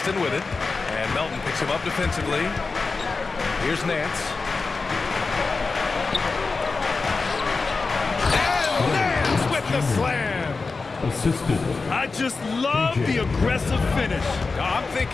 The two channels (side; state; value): right; quieter; 4.2 dB